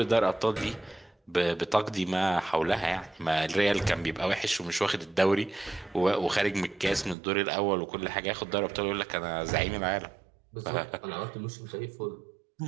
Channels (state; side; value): drops out; left; at 7.2 s